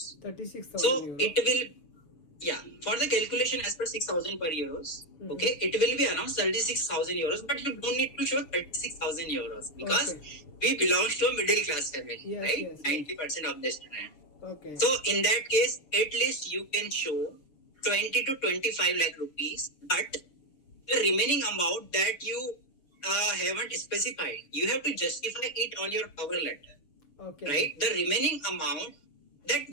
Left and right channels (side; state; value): right; late; 6.9 ms